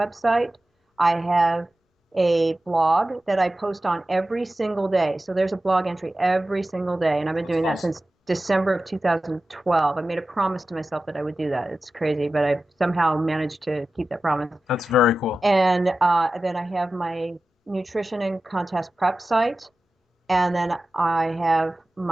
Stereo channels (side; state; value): both; normal; correlation 0.94